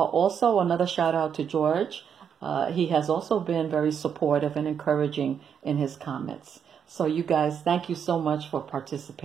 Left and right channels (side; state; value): left; quieter; 7.7 dB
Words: another shout out to George. He has also been very supportive and encouraging in his comments. So you guys, thank you so much for